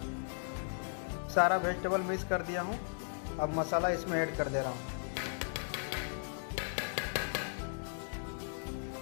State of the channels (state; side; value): silent; right; digital silence